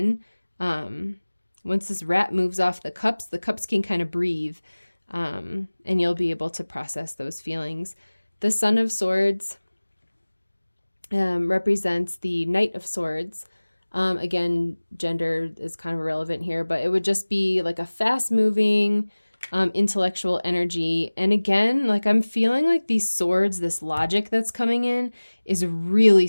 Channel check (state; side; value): inverted; both; correlation -1.00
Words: Once this rat moves off the cups can kind of breathe, and you'll be able to process those feelings. The Son of Swords represents the Knight of Swords. Again, gender is kind of irrelevant here, but it would just be like a fast-moving, intellectual energy. And again, like I'm feeling like these swords, this logic that's coming in is really